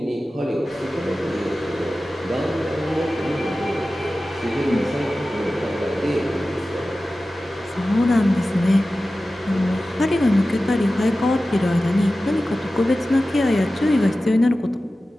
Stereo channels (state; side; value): normal; both; correlation 0.95